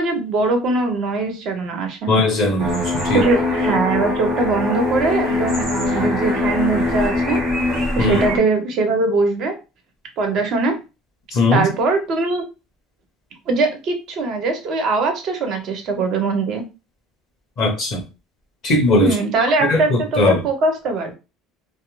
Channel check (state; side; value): normal; both; correlation 0.48